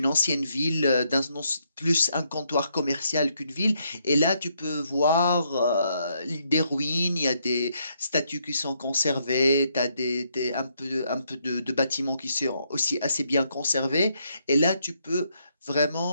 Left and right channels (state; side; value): inverted; both; correlation -0.75